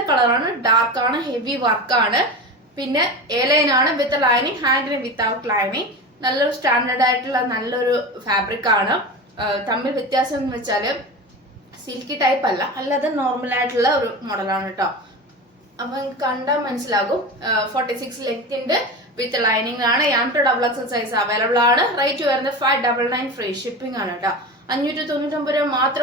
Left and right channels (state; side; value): normal; both; correlation 0.27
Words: കളറാണ്, ഡാർക്ക് ആണ്, ഹെവി വർക്കാണ്. പിന്നെ എലൈൻ ആണ് വിത്ത് ലൈനിങ്, ഹാൻഡിന് വിത്തൗട്ട് ലൈനിങ്. നല്ലൊരു സ്റ്റാൻഡേർഡ് ആയിട്ടുള്ള നല്ലൊരു ഫാബ്രിക് ആണ്. തമ്മിൽ വ്യത്യാസം എന്ന് വെച്ചാൽ സിൽക്കി ടൈപ്പ് അല്ല, അല്ലാതെ നോർമൽ ആയിട്ടുള്ള ഒരു മോഡലാണ് കേട്ടോ. അപ്പൊ കണ്ടാൽ മനസ്സിലാകും. 46 ലെങ്ത്തിന്റെ വിത്ത് ലൈനിങ് ആണ്. M2XX സൈസ് അവൈലബിൾ ആണ്. റേറ്റ് വരുന്നത് 599 ഫ്രീ ഷിപ്പിംഗ് ആണ് കേട്ടോ. 599 രൂപ